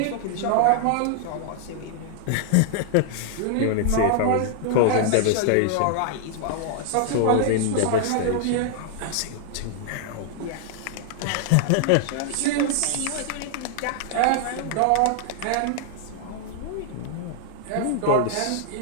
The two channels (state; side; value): different; both; correlation -0.01